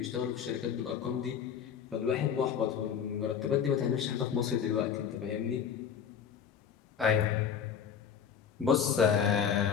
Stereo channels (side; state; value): right; quieter; 7.7 dB